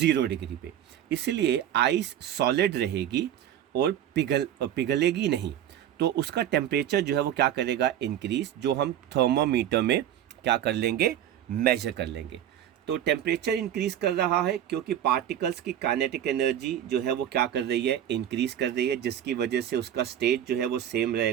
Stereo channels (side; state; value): left; quieter; 10.7 dB